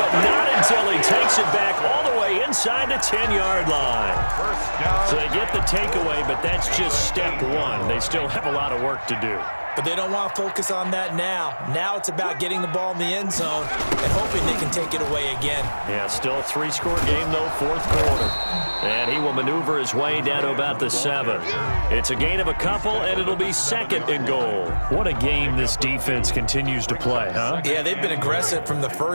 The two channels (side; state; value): both; inverted; correlation -1.00